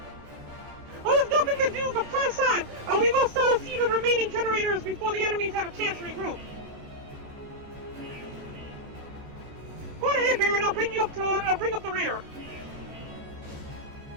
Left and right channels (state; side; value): late; left; 14 ms